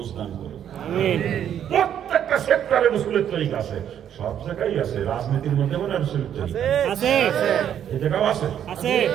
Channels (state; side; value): quieter; left; 9.7 dB